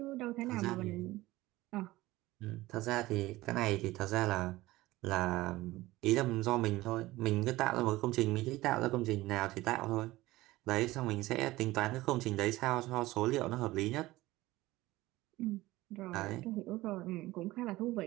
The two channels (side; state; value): left; quieter; 18.2 dB